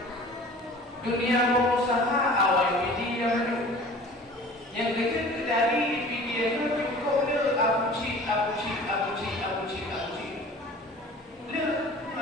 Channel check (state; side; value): normal; both; correlation 0.44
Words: dunia berusaha awal media maju yang kecil dari video itu cukup le abuci le